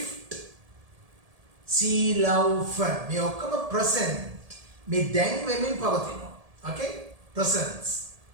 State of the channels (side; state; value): left; late; 1.7 ms